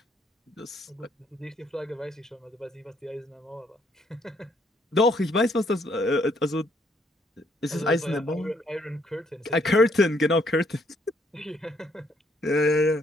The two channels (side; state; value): both; normal; correlation 0.69